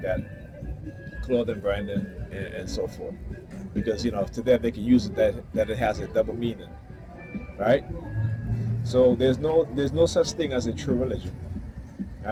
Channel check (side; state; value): both; identical; correlation 1.00